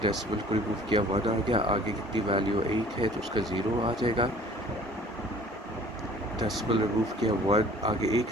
को रिमूव किया 1 आ गया, आगे कितनी वैल्यू 1 है तो उसका 0 आ जाएगा। डेसिमल रिमूव किया 1, आगे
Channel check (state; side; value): normal; both; correlation 0.50